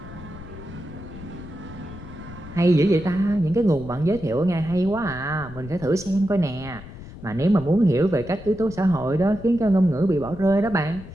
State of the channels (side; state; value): left; noise; rumble, 15 dB below the sound